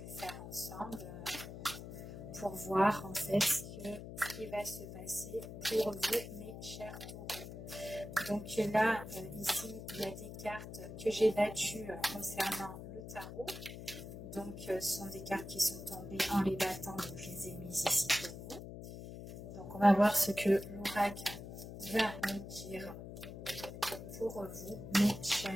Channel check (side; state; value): left; noise; hum, 10 dB below the sound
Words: faire ensemble pour voir en fait ce qui va se passer pour vous mes chers taureaux. Donc là ici il y a des cartes que j'ai battues concernant le tarot. Donc ce sont des cartes qui sont tombées en les battant, donc je les ai mises ici pour vous. Donc on va voir ce que l'oracle va nous dire pour vous mes